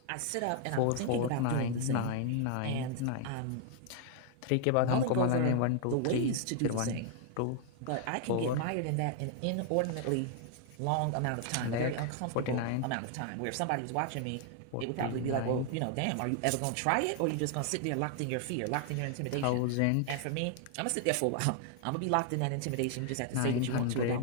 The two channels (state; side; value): different; both; correlation 0.00